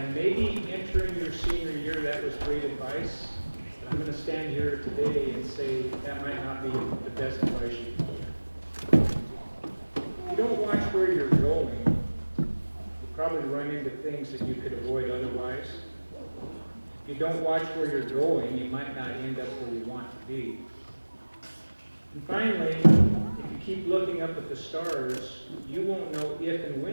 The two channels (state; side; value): inverted; both; correlation -1.00